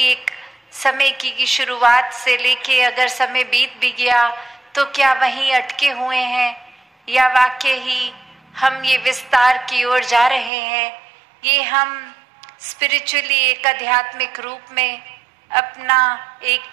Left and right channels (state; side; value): drops out; left; at 10.5 s